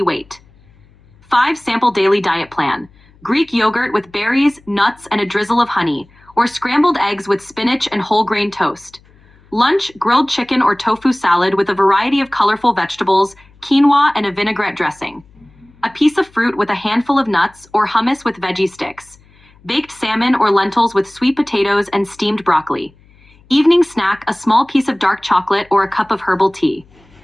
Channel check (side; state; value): left; noise; hum, 29 dB below the sound